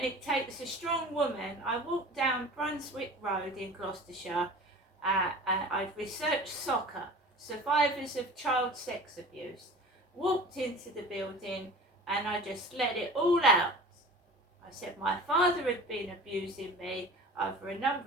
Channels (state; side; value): normal; both; correlation 0.39